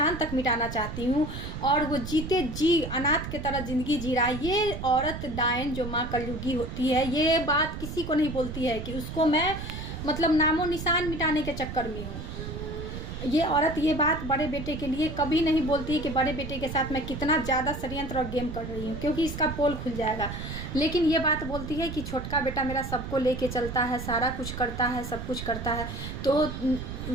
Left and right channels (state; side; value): noise; right; rumble, 7 dB below the sound